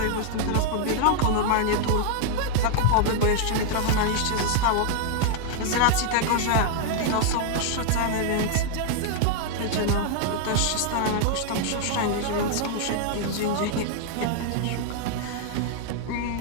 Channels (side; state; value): both; different; correlation 0.00